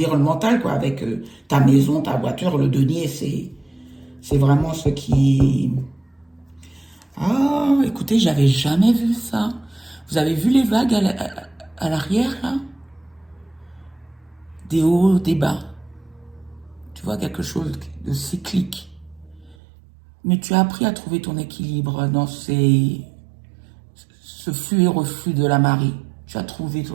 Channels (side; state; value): left; drops out; at 19.6 s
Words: quoi, avec ta maison, ta voiture, le denier, c'est vraiment ce qui... Ah, écoutez, j'avais jamais vu ça. Vous avez vu les vagues à l'arrière, là? Des hauts, des bas. Tu vois, quelque chose de cyclique. Mais tu as appris à trouver ton équilibre dans ce flux et reflux de la marée. Tu as trouvé